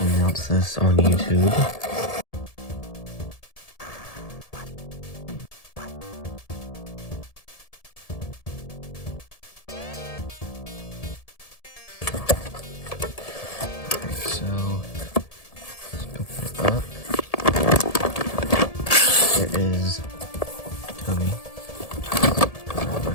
this on YouTube. So let's open it up. There is Tomy.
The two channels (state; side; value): late; right; 1.7 ms